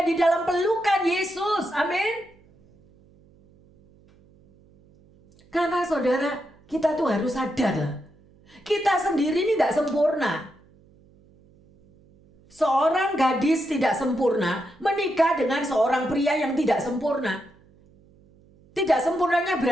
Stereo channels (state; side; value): noise; right; hum, 29 dB below the sound